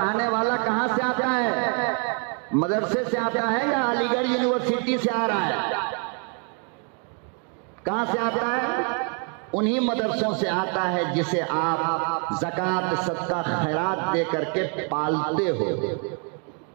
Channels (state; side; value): quieter; left; 39.6 dB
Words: والا کہاں سے آتا ہے؟ مدرسے سے آتا ہے یا علی گڑھ یونیورسٹی سے آ رہا ہے؟ کہاں سے آتا ہے؟ انہی مدرسوں سے آتا ہے جسے آپ زکوٰۃ، صدقہ، خیرات دے کر کے پالتے ہو،